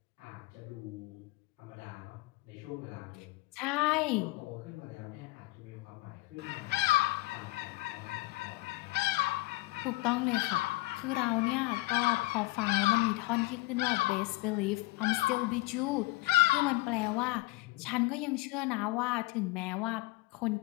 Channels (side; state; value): right; quieter; 20.9 dB